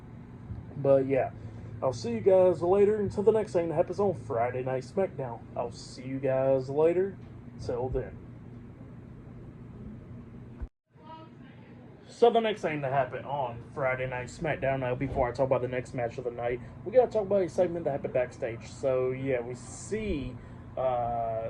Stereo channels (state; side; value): identical; both; correlation 1.00